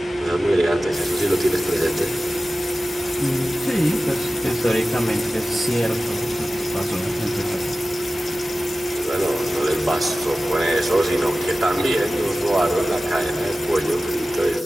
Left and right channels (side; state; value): both; normal; correlation 0.95